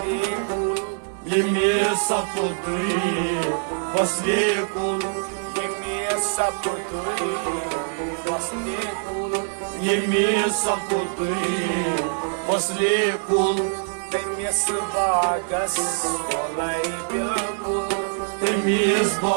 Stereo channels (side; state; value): left; silent; digital silence